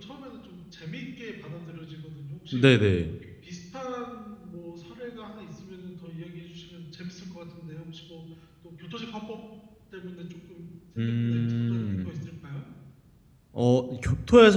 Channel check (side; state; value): both; identical; correlation 1.00